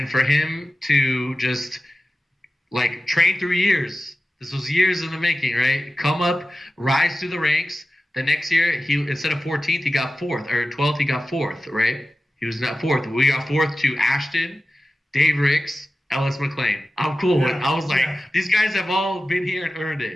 for him to just like train through years. This was years in the making, right? Come up, rise through the ranks. The next year, he instead of 14th, he got 4th, or 12th, he got 4th, right? He was not 4th. We got 4th to Ashton, Dave Ricks, Ellis McLean. I'm cool with. I was like, these guys have all been here and earned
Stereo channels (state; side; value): normal; both; correlation 0.95